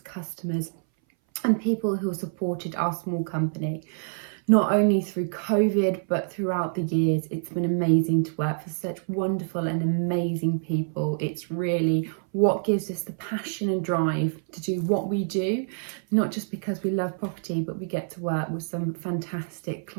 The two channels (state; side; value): silent; left; 59 dB below the other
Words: and people who have supported our small company. Not only through COVID, but throughout the years. It's been amazing to work for such wonderful and amazing people. It's really what gives us the passion and drive to do what we do, not just because we love property, but we get to work with some fantastic